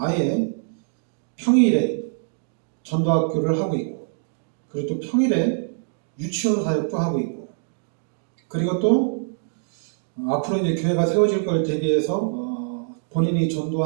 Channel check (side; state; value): left; silent; digital silence